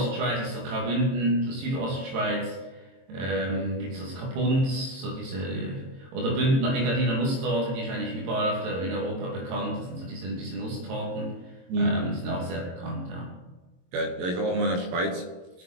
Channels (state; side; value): late; left; 22 ms